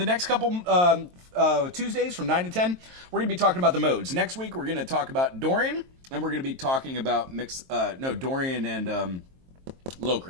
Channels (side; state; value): left; late; 23 ms